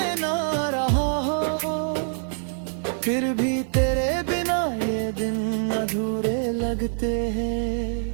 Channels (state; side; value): silent; left; digital silence